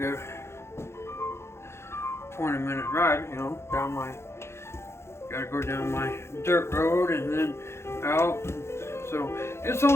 20-minute ride, gotta go down my dirt road and then out. So it's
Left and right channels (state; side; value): late; right; 0.13 ms